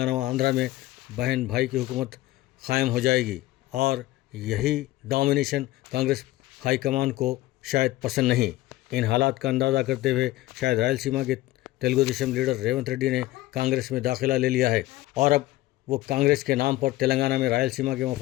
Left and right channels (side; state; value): right; quieter; 17.3 dB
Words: و آندھرا میں بہن بھائی کی حکومت قائم ہو جائے گی، اور یہی ڈومینیشن کانگریس ہائی کمان کو شاید پسند نہیں۔ ان حالات کا اندازہ کرتے ہوئے شاید رائل سیما کے تیلگو دیشم لیڈر ریونت ریڈی نے کانگریس میں داخلہ لے لیا ہے اور اب وہ کانگریس کے نام پر تلنگانہ میں رائل سیما کے